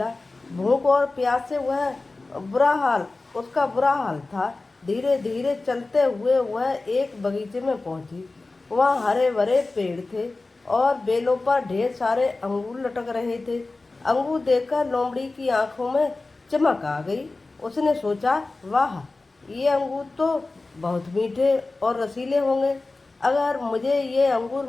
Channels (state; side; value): quieter; right; 3.4 dB